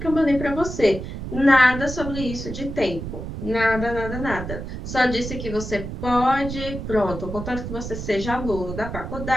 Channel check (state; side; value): noise; right; rumble, 7 dB below the sound